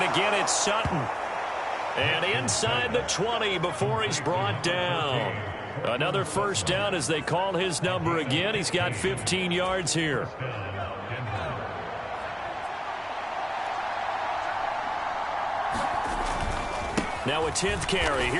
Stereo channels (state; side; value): identical; both; correlation 1.00